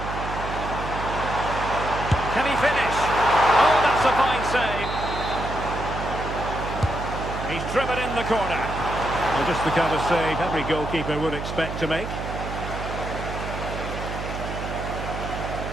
Can he finish? Oh, that's a fine save. He's driven in the corner. Well, just the kind of save every goalkeeper would expect to make.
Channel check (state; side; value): noise; right; hum, 6 dB below the sound